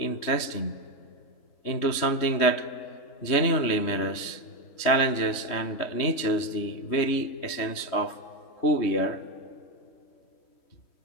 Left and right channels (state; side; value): late; right; 3.2 ms